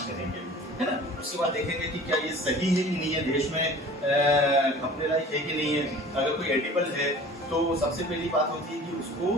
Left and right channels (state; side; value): normal; both; correlation 0.44